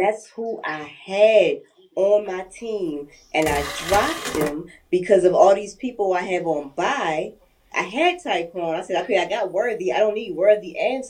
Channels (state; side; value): identical; both; correlation 1.00